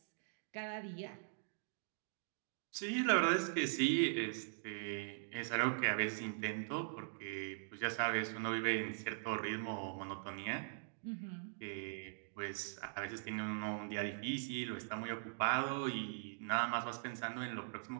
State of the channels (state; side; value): silent; left; digital silence